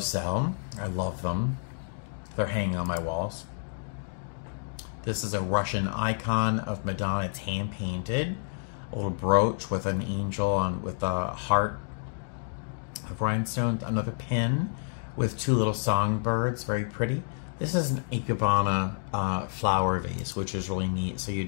sell. I love them. They're hanging on my walls. This is a Russian icon of Madonna. It's hand painted. A little brooch with an angel on with a heart of rhinestones. Another pin with two little songbirds. Very pretty. This is an ikebana flower vase, which is really neat. So you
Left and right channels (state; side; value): silent; right; digital silence